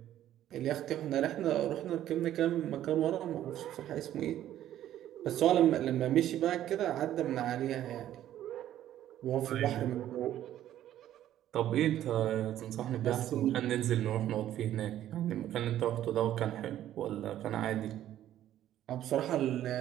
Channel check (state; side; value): quieter; left; 12.2 dB